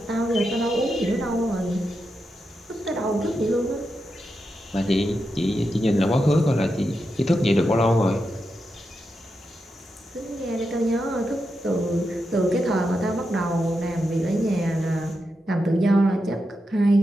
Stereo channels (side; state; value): both; normal; correlation 0.87